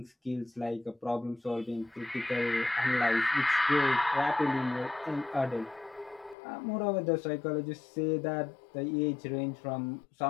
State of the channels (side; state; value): right; drops out; at 6.4 s